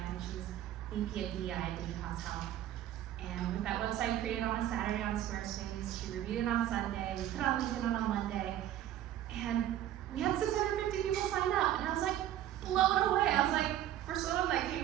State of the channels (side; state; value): left; quieter; 12.1 dB